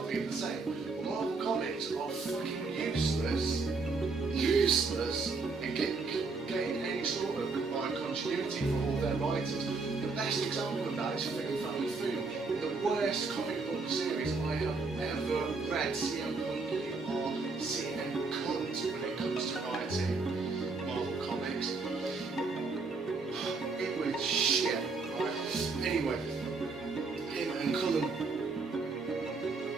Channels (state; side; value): quieter; left; 4.1 dB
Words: being the same. But Marvel comics are fucking useless in getting any sort of combined continuity for all their writers. The best example of that is Film Family Food, the worst comic book series I have ever read. CM Punk, you are CM cunt when it comes to writing Marvel comics. It was shit, right? Anyway, him and Cullen, I